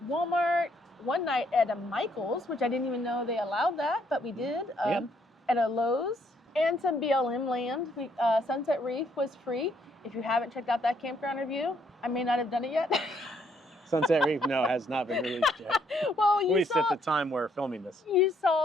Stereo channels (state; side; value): normal; both; correlation 0.70